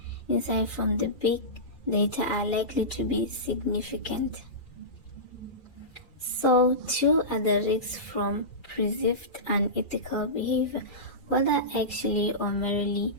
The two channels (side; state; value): right; late; 2.4 ms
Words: insight from the big data are likely to be significant. So, two are the risks from perceived unethical behavior, whether actually or merely